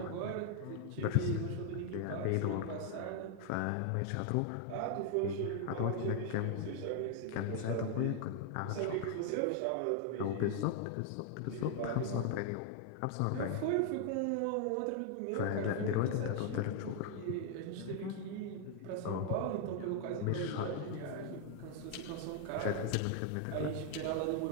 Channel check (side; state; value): both; different; correlation 0.00